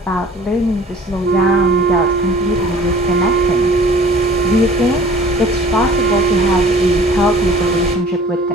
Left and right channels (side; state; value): both; normal; correlation 0.49